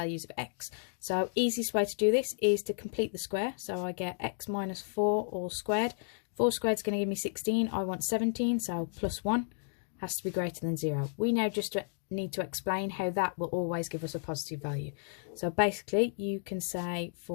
of x. So easiest way to do this is to complete the square. So I get x minus 4 all squared. 4 squared is going to give me 16. I want 17, so plus 1 has to be greater than 0. We now just need to explain how that will always give us a positive value. So basically you can say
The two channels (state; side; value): silent; right; digital silence